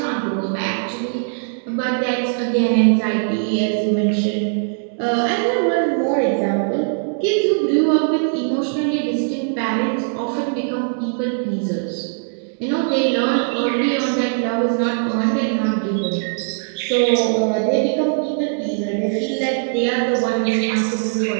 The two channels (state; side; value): silent; left; 66 dB below the other